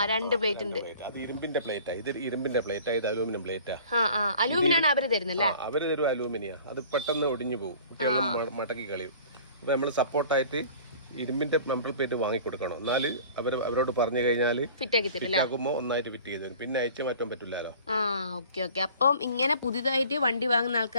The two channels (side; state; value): both; inverted; correlation -0.47